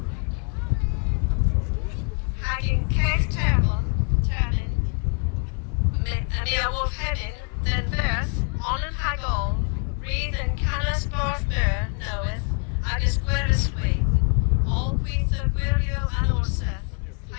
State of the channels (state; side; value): quieter; right; 38.7 dB